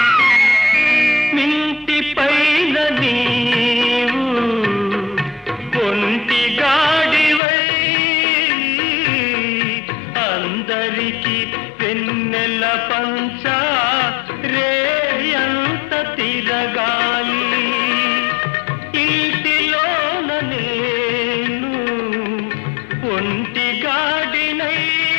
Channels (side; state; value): right; drops out; at 7.4 s